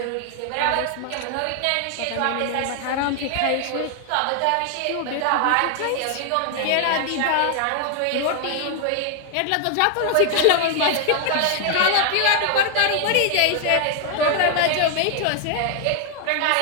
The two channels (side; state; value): both; different; correlation 0.00